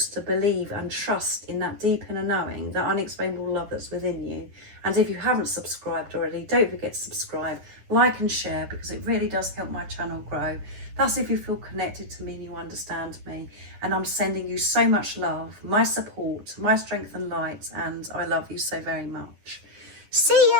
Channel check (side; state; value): left; late; 10 ms